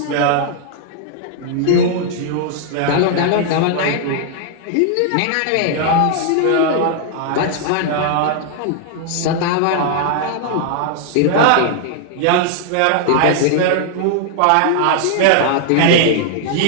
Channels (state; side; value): different; both; correlation 0.00